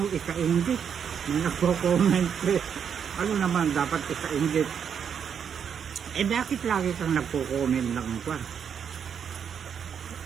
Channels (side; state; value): left; quieter; 7.6 dB